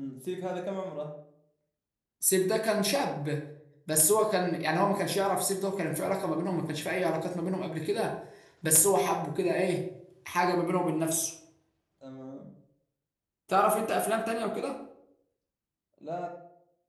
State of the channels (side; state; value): both; identical; correlation 1.00